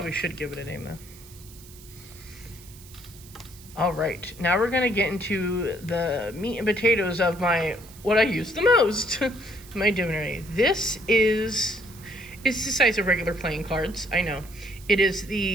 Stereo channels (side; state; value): right; noise; hiss, 20 dB below the sound